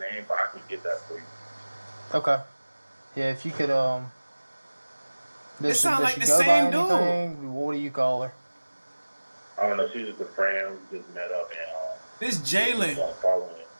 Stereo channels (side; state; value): both; inverted; correlation -1.00